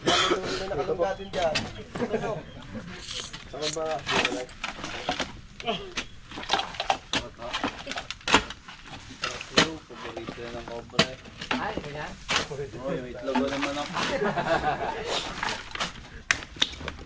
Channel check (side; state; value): both; identical; correlation 1.00